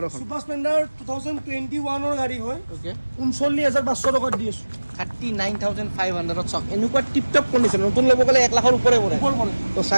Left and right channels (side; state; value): both; inverted; correlation -1.00